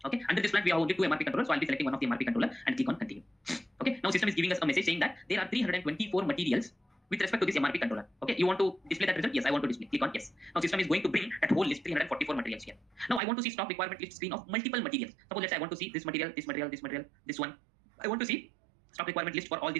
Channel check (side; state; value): left; drops out; at 13.2 s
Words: Okay, under this plan we have only two MRP controllers, so I'll be selecting one of the MRP controller and click on continue. Okay, now system is giving us a message saying that there are 324 materials with respect to this MRP controller. Okay, you want to display that result? Yes, I want to display. Click on yes. Now system is going to bring that whole list 344 materials here. Now I want to see stock requirement list screen of multiple materials. Suppose let's say I want to see this material, this material, this material, this one. I want to see stock requirement list for all